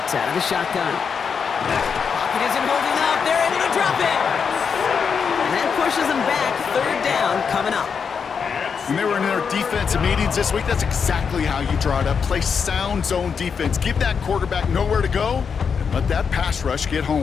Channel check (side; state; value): right; quieter; 6.3 dB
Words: out of the shotgun. Pocket isn't holding up. They're able to drop it. And that pushes them back. Third down coming up. When they were in their defensive meetings this week, that's exactly how you draw it up. Play sound zone defense. Give that quarterback nowhere to go and let that pass rush get